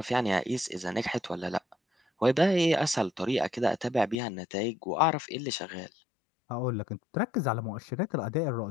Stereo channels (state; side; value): drops out; right; at 4.2 s